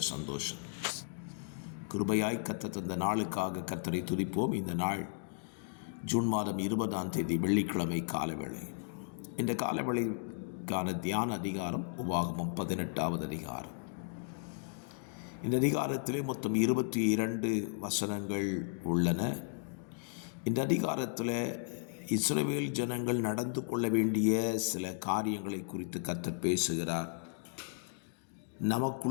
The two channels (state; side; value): silent; right; digital silence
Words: சந்தோஷம். கிருபையாய் கர்த்தர் தந்த நாளுக்காக கர்த்தரை துதிப்போம். இந்த நாள் ஜூன் மாதம் 20ஆம் தேதி வெள்ளிக்கிழமை காலவேளை. இந்த காலவேளைக்கான தியான அதிகாரம் உபாகமம் 18வது அதிகாரம். இந்த அதிகாரத்திலே மொத்தம் 22 வசனங்கள் உள்ளன. இந்த அதிகாரத்தில் இஸ்ரவேல் ஜனங்கள் நடந்து கொள்ள வேண்டிய சில காரியங்களை குறித்து கர்த்தர் பேசுகிறார்.